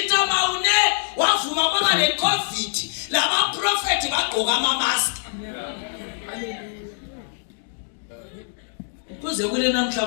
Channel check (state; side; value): silent; right; digital silence